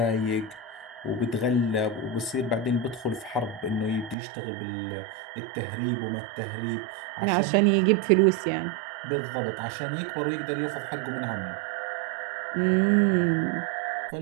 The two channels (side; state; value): left; drops out; at 4.2 s